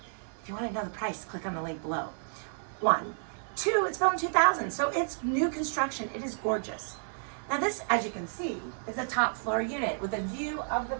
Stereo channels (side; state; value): left; silent; 57 dB below the other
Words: If you want to know the price, click on the link below. 1. 2, it's built in 2000, so it's new construction. It is gorgeous. Now this, as you can see, is a top floor unit with a view of the